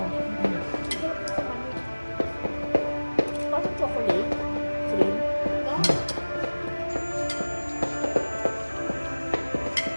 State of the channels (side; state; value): both; inverted; correlation -1.00